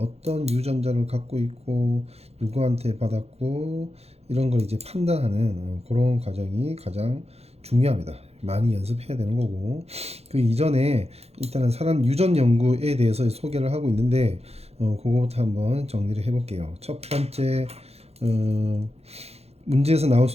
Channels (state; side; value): late; left; 0.30 ms